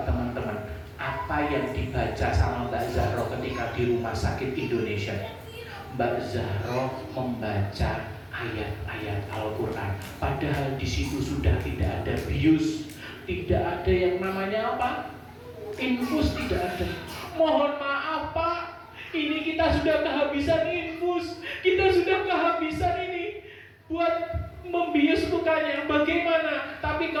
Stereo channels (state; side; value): identical; both; correlation 1.00